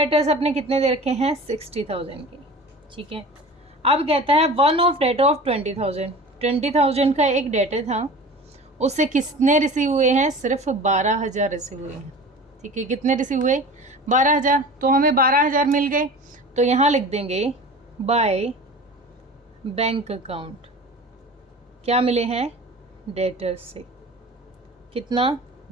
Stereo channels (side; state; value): both; normal; correlation 0.37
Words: अपने कितने दे रखे हैं, 60,000 की. ठीक है, अब कहता है वन ऑफ डेटर ऑफ 20,000 का एक डेटर था, उससे कितने रिसीव हुए हैं, सिर्फ 12,000 रिसीव हुए हैं. ठीक है, कितने रिसीव हुए, 12,000. तो हमें 12,000 मिल गए, तो यहाँ लिख देंगे बाय बैंक अकाउंट. क्या मिले हैं, डेटर्स से कितना,